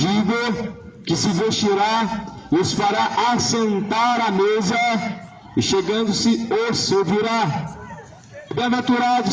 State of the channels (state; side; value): identical; both; correlation 1.00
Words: que se vestirá e os fará assentar à mesa, e chegando-se os servirá. Bem-aventurado